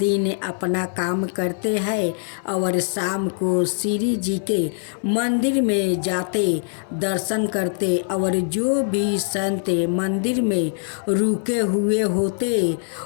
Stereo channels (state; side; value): silent; right; digital silence